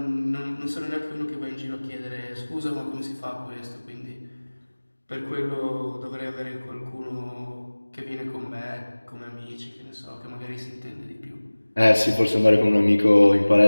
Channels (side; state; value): both; inverted; correlation -1.00